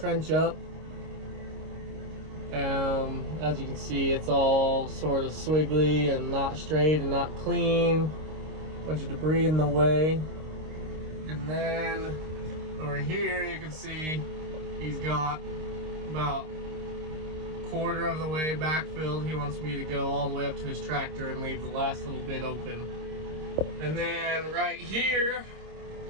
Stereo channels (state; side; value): late; left; 26 ms